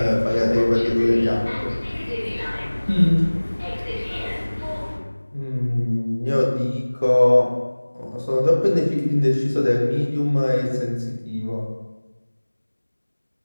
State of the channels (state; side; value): inverted; both; correlation -1.00